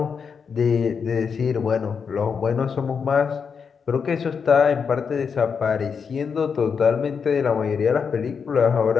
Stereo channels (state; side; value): quieter; right; 6.1 dB